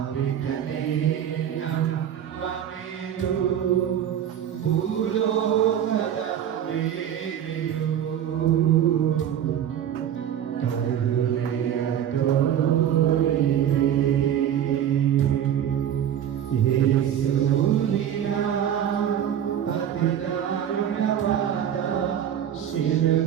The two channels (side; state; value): left; quieter; 9.8 dB